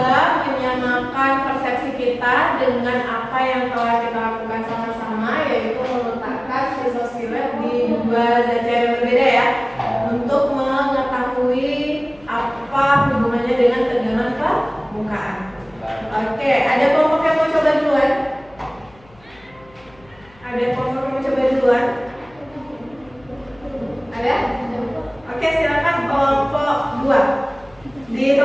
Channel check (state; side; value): noise; left; hum, 28 dB below the sound